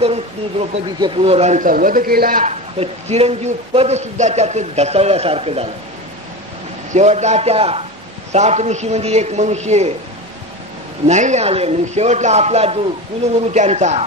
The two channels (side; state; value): both; normal; correlation 0.25